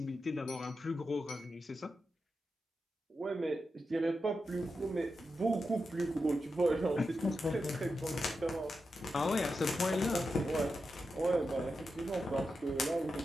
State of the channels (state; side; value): normal; both; correlation 0.89